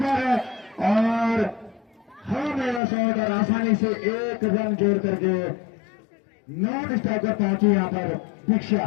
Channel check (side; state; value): right; drops out; at 2.8 s